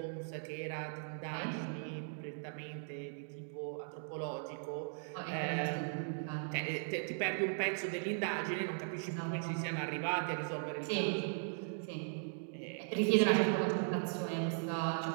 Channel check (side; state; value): left; silent; digital silence